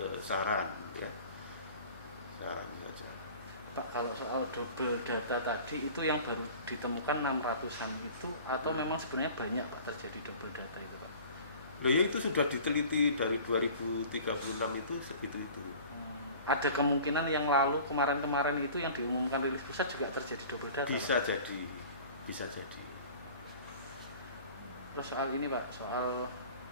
saran ya, saran saja. Pak, kalau soal double data tadi itu yang baru ditemukan 600-an itu atau memang sebenarnya banyak Pak terjadi double data itu Pak? Loh ya, itu sudah diteliti dari 2036 itu segitu itu. Ada kemungkinan yang lalu kemarin-kemarin itu yang diumumkan rilis pusat juga terjadi double data? Bisa Pak? jadi, bisa jadi. Terus soal ini Pak, soal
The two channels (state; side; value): inverted; both; correlation -0.44